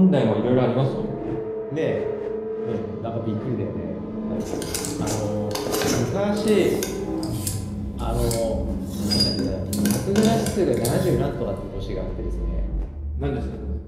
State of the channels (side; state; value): both; identical; correlation 1.00